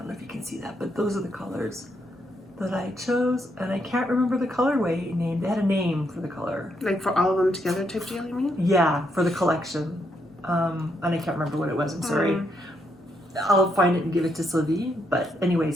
know if you can see that. But those are the colors that I chose, and I can't remember the colorway name. They had a name for the color. Like for all of them together type deal, you mean? Yeah, for the collection. And I can't remember what it was, I'm sorry. I'll find it and give it to Sylvie. But anyway,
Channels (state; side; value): normal; both; correlation 0.76